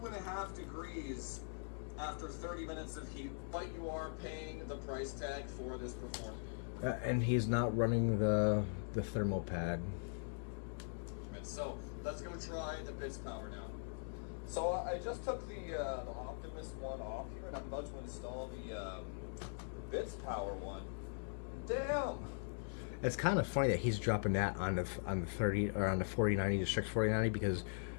degrees after 30 minutes of heat, but you are paying the price tag for this performance. And he's not running the thermal pad. So let's go try the Bitspower now. So I just took the Optimus one off here, and I'm about to install the Bitspower one. Damn. It's kind of funny that he's dropping that on the 30 or on the 4090, the Strix 4090, because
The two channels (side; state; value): right; silent; digital silence